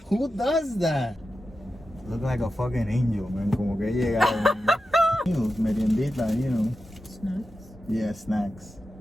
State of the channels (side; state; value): both; normal; correlation 0.91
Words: Who does that? Look like a fucking angel, man. Como que llegaron. Meriendita, you know. Snacks? Yeah, snacks.